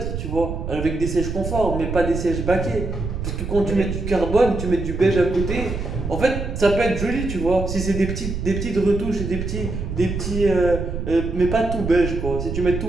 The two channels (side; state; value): right; noise; rumble, 5 dB below the sound